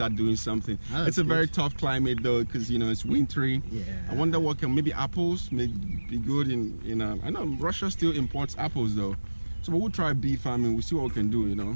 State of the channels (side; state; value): both; inverted; correlation -1.00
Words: doing something. It's a very tough climate though, because it's wintry. Yeah. I wonder what maybe apples may be good in I know Russia still imports apples though. So we'll try bee farming, we'll see what we can do,